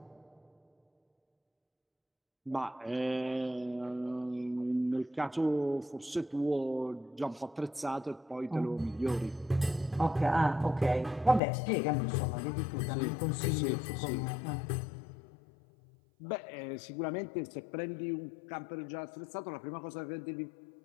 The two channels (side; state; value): right; drops out; at 11.4 s